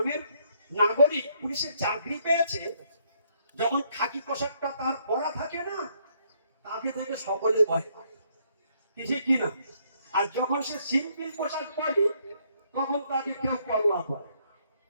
নাগরিক পুলিশের চাকরি পেয়েছে, যখন খাকি পোশাকটা তার পরা থাকে না, তাকে দেখে সকলে ভয় পায়। কিছু কিনা। আর যখন সে সিম্পল পোশাক পরে তখন তাকে কেউ পরোয়া করে,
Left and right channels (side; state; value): both; inverted; correlation -0.70